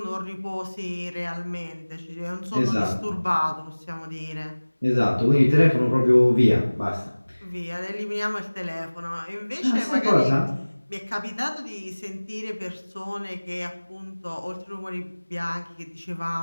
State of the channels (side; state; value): both; inverted; correlation -1.00